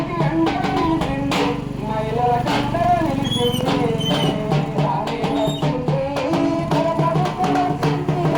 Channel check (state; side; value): identical; both; correlation 1.00